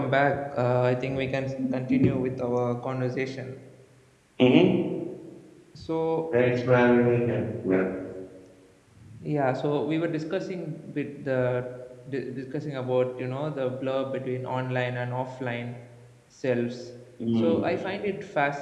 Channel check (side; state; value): both; identical; correlation 1.00